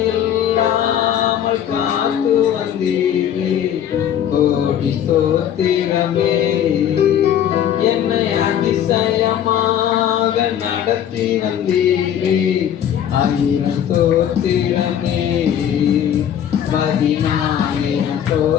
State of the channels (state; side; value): quieter; right; 9.8 dB